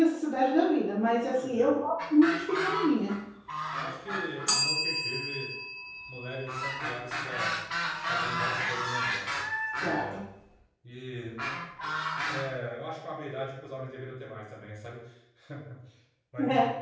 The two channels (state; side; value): identical; both; correlation 1.00